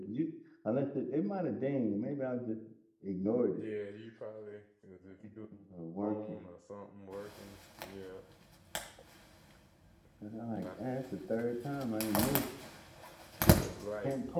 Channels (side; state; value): both; identical; correlation 1.00